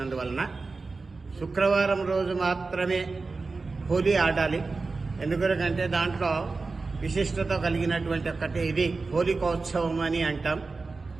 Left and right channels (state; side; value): quieter; left; 4.0 dB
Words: శుక్రవారం రోజు మాత్రమే హోలీ ఆడాలి. ఎందుకంటే దాంట్లో విశిష్టత కలిగినటువంటి ఒక్కటి ఇది హోలికోత్సవం అని అంటాం.